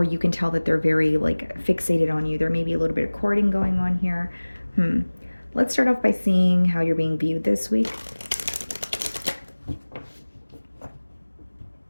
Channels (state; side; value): inverted; both; correlation -1.00